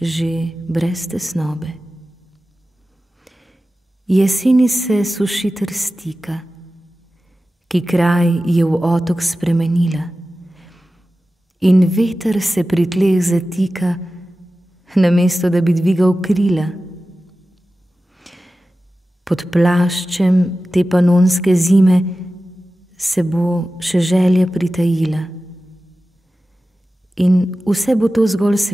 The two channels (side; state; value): both; normal; correlation 0.95